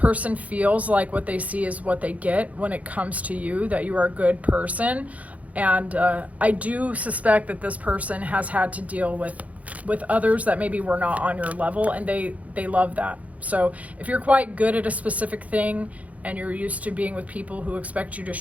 feels like what they see is what they get when it comes to you, that you are a good person. And I do suspect that this person has had to deal with others that maybe were not on your level, and they love that. So if you're quite good at a specific thing and you're used to being with people who expect you to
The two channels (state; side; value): late; left; 0.069 ms